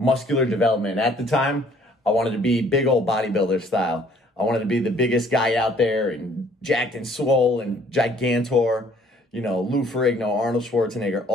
development. At the time, I wanted to be big old bodybuilder style. I wanted to be the biggest guy out there and jacked and swole and gigantor, Lou Ferrigno, Arnold Schwarzenegger,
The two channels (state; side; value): normal; both; correlation 0.60